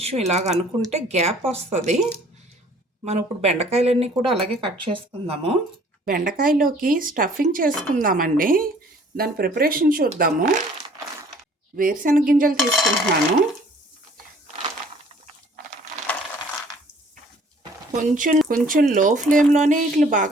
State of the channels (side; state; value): both; normal; correlation 0.55